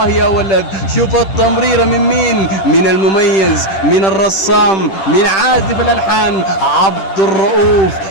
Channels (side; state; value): right; late; 10 ms